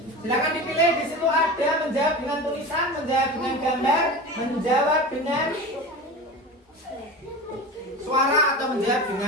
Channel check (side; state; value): both; normal; correlation 0.30